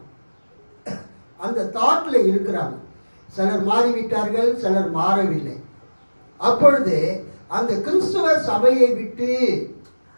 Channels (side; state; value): both; inverted; correlation -1.00